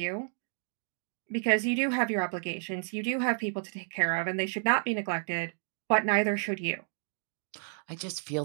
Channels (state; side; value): silent; left; 56 dB below the other